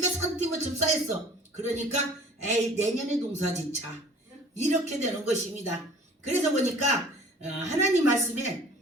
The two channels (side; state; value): both; normal; correlation 0.48